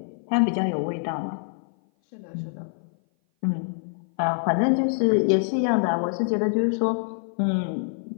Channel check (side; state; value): right; silent; 57 dB below the other